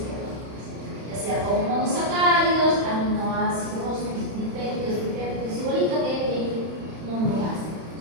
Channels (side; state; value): left; late; 31 ms